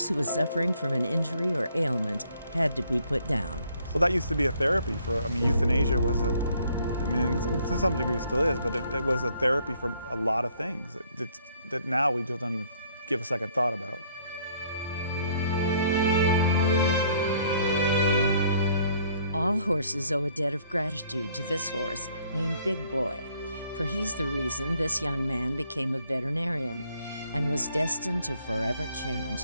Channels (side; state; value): both; inverted; correlation -0.64